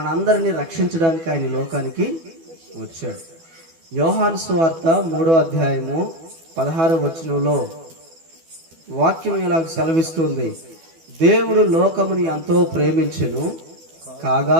రక్షించడానికి ఆయన లోకానికి వచ్చాడు. యోహాను సువార్త 3వ అధ్యాయము 16వ వచనంలో వాక్యం ఇలాగ సెలవిస్తుంది. దేవుడు లోకముని ఎంతో ప్రేమించెను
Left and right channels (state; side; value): late; left; 12 ms